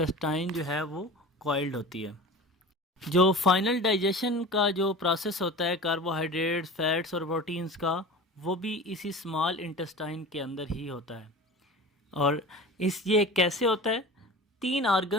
जो है वो कॉइल्ड होती है। जो फाइनल डाइजेशन का जो प्रोसेस होता है कार्बोहाइड्रेट्स, फैट्स और प्रोटीन्स का, वो भी इसी स्मॉल इंटेस्टाइन के अंदर ही होता है। और ये कैसे होता है? 3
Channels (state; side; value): normal; both; correlation 0.35